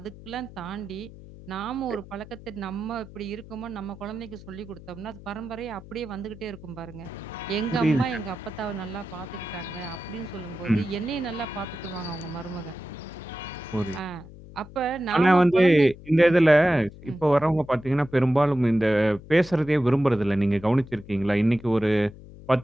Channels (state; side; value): noise; left; hum, 17 dB below the sound